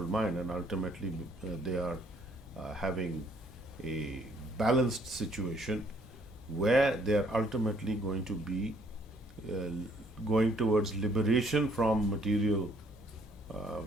mind, and ultimately they are having a balanced situation where they are ultimately going to be going towards liberation from material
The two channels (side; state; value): both; normal; correlation 0.64